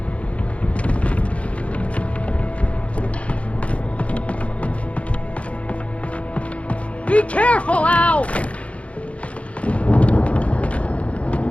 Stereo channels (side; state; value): right; late; 0.063 ms